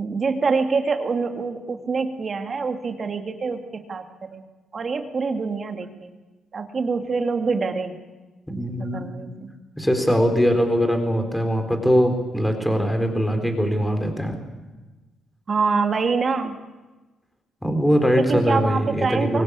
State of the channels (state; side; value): normal; both; correlation 0.90